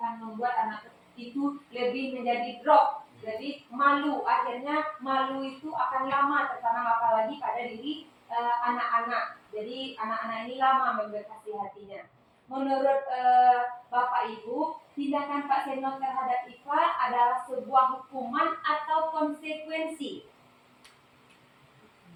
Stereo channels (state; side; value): identical; both; correlation 1.00